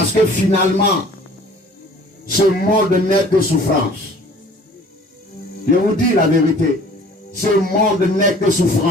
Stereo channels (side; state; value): both; normal; correlation 0.50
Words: que finalement, ce monde n'est que souffrance. Je vous dis la vérité. Ce monde n'est que